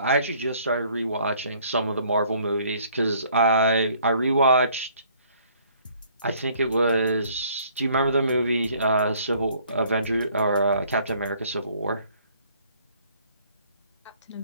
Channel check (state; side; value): inverted; both; correlation -0.60